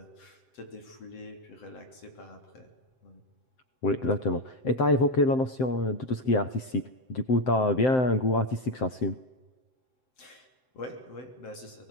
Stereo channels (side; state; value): right; late; 7.8 ms